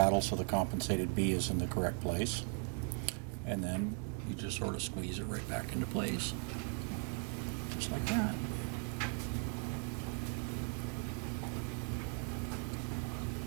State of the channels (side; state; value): left; quieter; 38.1 dB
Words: so the compensated B is in the correct place. And then you just sort of squeeze it right back into place. Just like that.